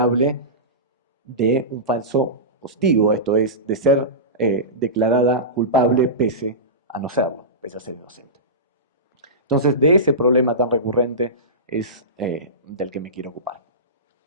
de un falso positivo, esto es, de ser declarada culpable pese a no serlo, pese a ser inocente. Entonces, de ese problema tan recurrente es del que me quiero ocupar.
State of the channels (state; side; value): normal; both; correlation -0.20